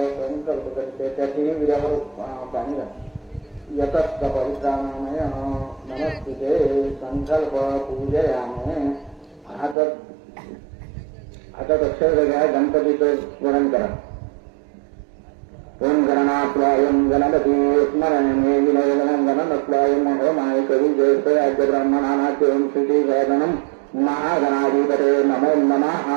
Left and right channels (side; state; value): left; drops out; at 9.8 s